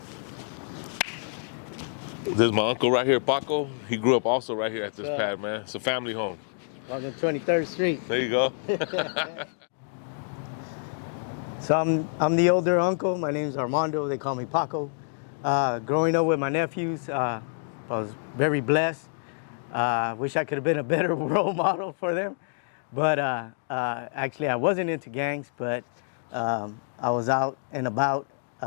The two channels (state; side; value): silent; right; digital silence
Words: This is my uncle right here, Paco. He grew up also right here at this pad, man. It's a family home. On the 23rd Street. There you go. So I'm the older uncle. My name's Armando. They call me Paco. Growing up with my nephews, I was very blessed. Wish I could have been a better role model for them. But actually, I wasn't into gangs, but I was out and about.